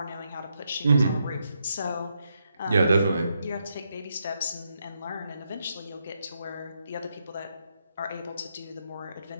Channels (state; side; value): inverted; both; correlation -0.81